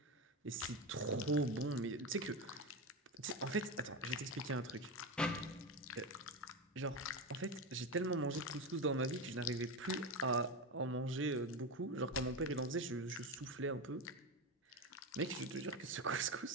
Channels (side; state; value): both; normal; correlation 0.17